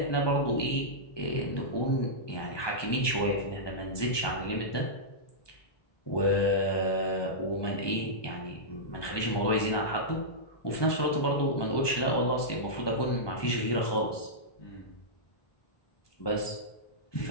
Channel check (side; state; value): right; late; 1.2 ms